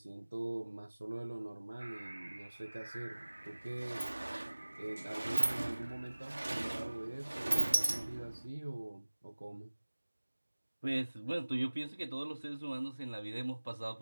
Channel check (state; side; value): inverted; both; correlation -1.00